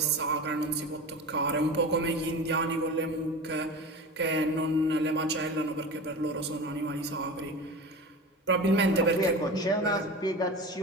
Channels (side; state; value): both; normal; correlation 0.30